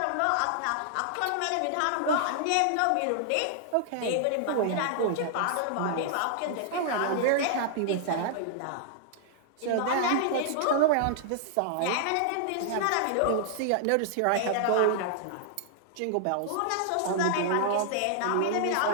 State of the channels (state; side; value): different; both; correlation -0.01